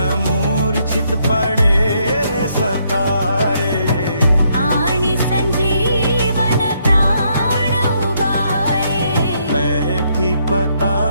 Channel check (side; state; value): both; inverted; correlation -0.72